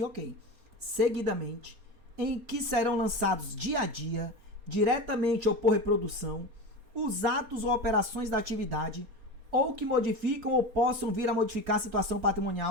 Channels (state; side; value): late; left; 4.3 ms